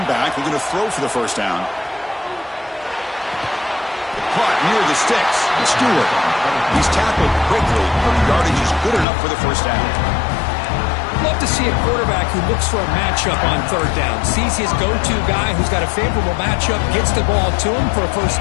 back, we're going to throw for the first down. Caught near the sticks. It's Stewart. He's tackled quickly. The yardage is good enough for the first down. Love to see a quarterback who looks for a matchup on third down. Sees his go-to guy who's got a favorable matchup, gets the ball to him for a first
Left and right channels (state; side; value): drops out; right; at 9.1 s